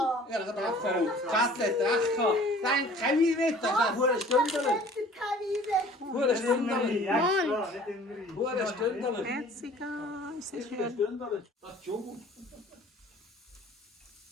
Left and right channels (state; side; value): normal; both; correlation 0.50